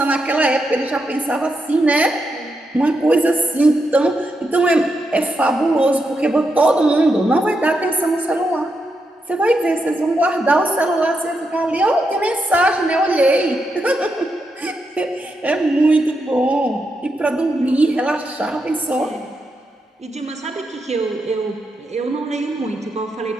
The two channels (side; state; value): both; normal; correlation 0.84